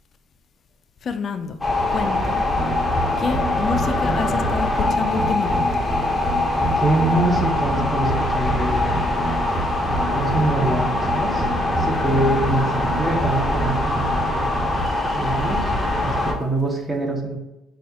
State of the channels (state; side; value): normal; both; correlation 0.71